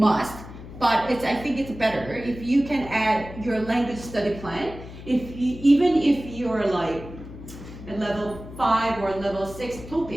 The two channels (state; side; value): noise; left; hum, 14 dB below the sound